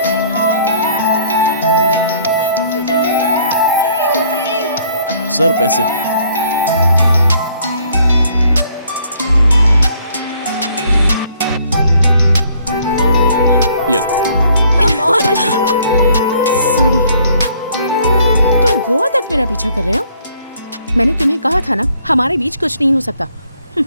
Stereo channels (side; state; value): both; inverted; correlation -0.62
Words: सर पैसे। ये सॉरी। तुम गोवा तक मेरा पीछा कर रहे हो? मैंने तुम्हें कहा था ना, हमारे बीच कुछ नहीं हो सकता।